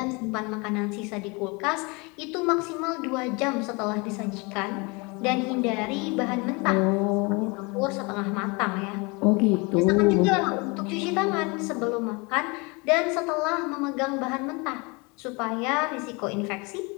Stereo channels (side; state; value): right; quieter; 28.3 dB